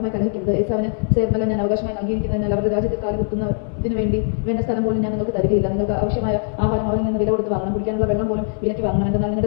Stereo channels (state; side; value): silent; right; digital silence